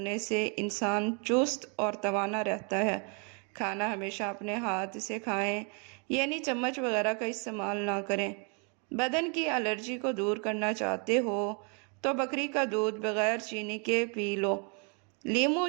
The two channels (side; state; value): left; quieter; 37.0 dB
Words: سے انسان چست اور توانا رہتا ہے۔ کھانا ہمیشہ اپنے ہاتھ سے کھائیں، یعنی چمچ وغیرہ کا استعمال نہ کریں۔ بدن کی الرجی کو دور کرنا چاہتے ہو تو بکری کا دودھ بغیر چینی کے پی لو۔ لیموں